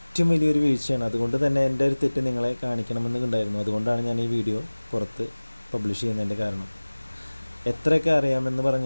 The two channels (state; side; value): inverted; both; correlation -1.00